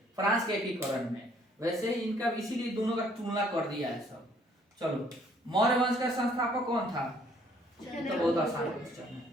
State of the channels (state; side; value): normal; both; correlation 0.62